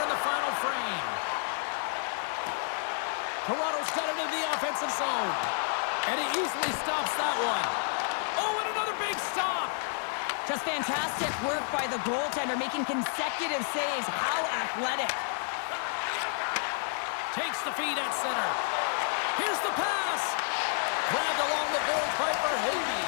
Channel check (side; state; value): right; silent; 58 dB below the other